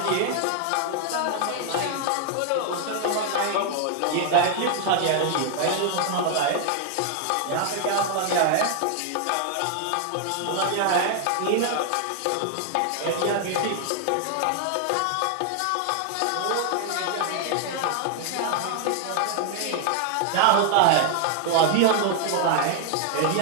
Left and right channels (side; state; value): both; different; correlation 0.00